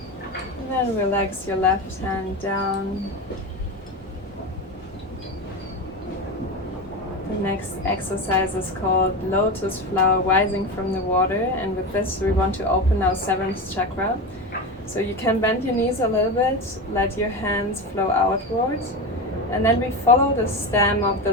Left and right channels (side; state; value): both; normal; correlation 0.21